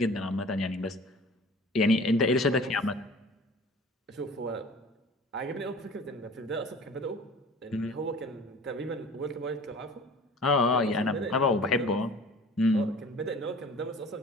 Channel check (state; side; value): normal; both; correlation 0.44